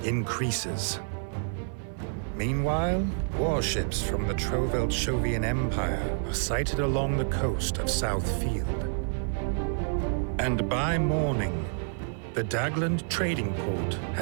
increases. Meanwhile, warships from the Trovelt-Shovian Empire are sighted along the coast of Southfield. And by morning, the Dagland trading port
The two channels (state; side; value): silent; left; 59 dB below the other